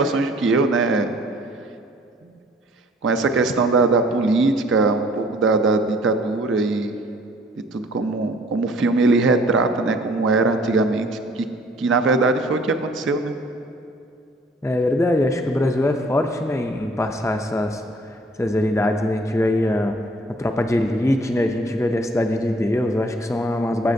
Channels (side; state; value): both; normal; correlation 0.56